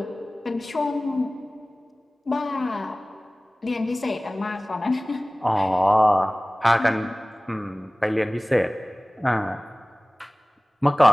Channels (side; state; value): both; normal; correlation 0.98